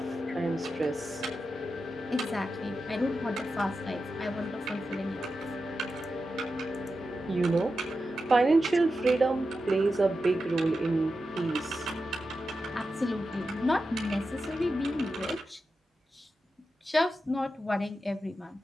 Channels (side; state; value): both; normal; correlation 0.90